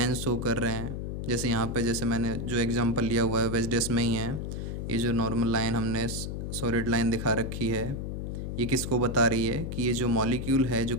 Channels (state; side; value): noise; left; hum, 4 dB below the sound